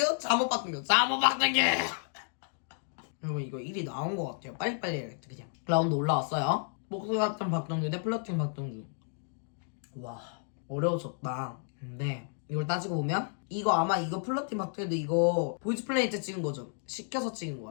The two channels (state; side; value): silent; right; 57 dB below the other